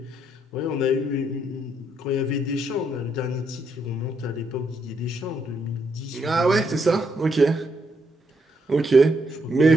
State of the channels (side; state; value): both; normal; correlation 0.76